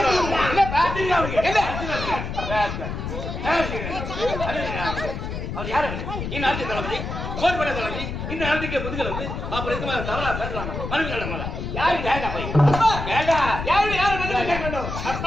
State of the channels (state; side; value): noise; left; rumble, 5 dB below the sound